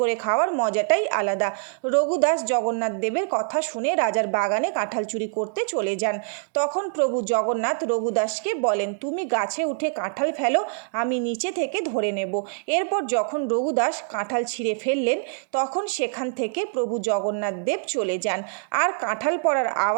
খাওয়ার মজাটাই আলাদা। রঘুদাস জগন্নাথ দেবের কথা শুনে রাজার বাগানে কাঁঠাল চুরি করতে চলে যান। তখন প্রভু জগন্নাথ রঘুদাসকে বলেন, তুমি গাছে উঠে কাঁঠাল ফেলো, আমি নিচে থেকে ধরে নেব। এরপর যখন রঘুদাস কাঁঠাল ছিঁড়ে ফেললেন, তখন সেখান থেকে প্রভু জগন্নাথ দেব চলে যান। আর কাঁঠাল পড়ার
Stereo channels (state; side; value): silent; left; digital silence